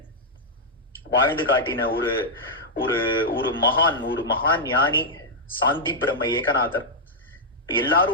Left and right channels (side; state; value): both; normal; correlation -0.05